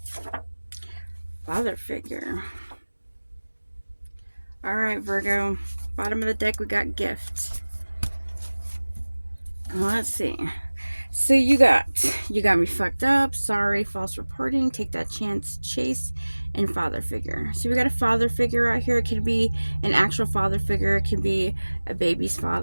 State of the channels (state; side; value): inverted; both; correlation -1.00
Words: Father figure. All right, Virgo. Bottom of the deck, we got gift. Let's see. So you got me fucked up. Sorry, false reporting. Take that chance, chase, and father figure. So we got a father figure out here. It could be an actual father figure. It could be a baby's